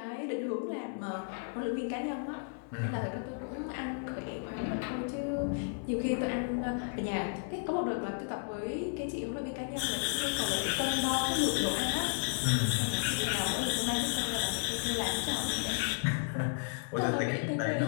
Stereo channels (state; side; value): silent; right; 56 dB below the other